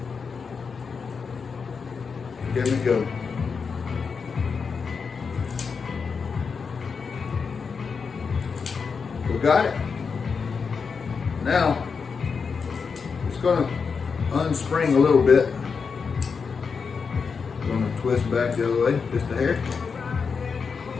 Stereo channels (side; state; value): right; quieter; 5.5 dB